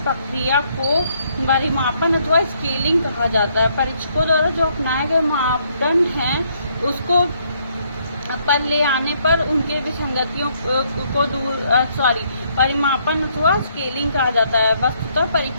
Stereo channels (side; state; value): both; inverted; correlation -0.70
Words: को परिमापन अथवा स्केलिंग कहा जाता है। परीक्षकों द्वारा जो अपनाए गए मापदंड हैं उसको पर ले आने पर उनके विसंगतियों को परिमापन अथवा स्केलिंग कहा जाता है। वस्तुतः